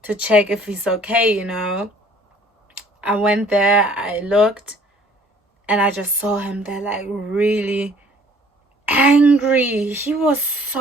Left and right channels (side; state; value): both; normal; correlation 0.56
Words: check if he's okay, you know. I went there, I looked, and I just saw him there like really angry. He was